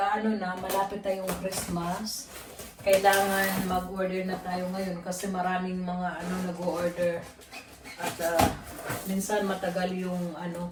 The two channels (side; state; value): both; identical; correlation 1.00